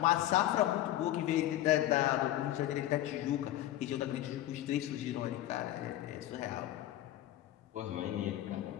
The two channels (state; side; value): quieter; right; 13.8 dB